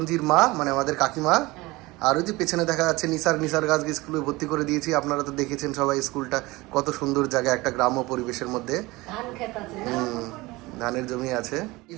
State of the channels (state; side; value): quieter; left; 21.4 dB